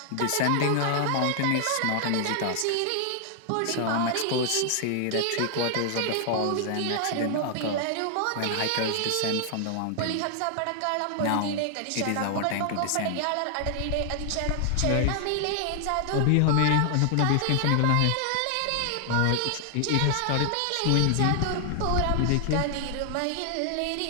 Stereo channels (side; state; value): both; different; correlation 0.00